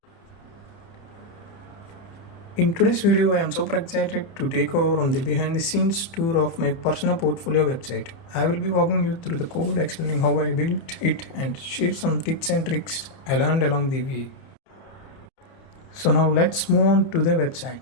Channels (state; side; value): late; right; 30 ms